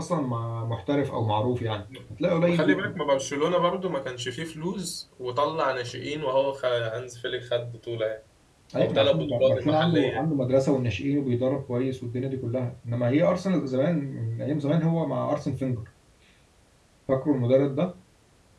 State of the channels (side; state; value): both; identical; correlation 1.00